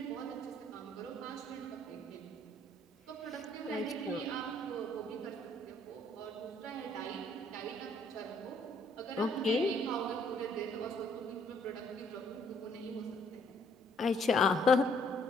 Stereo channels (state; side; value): normal; both; correlation 0.65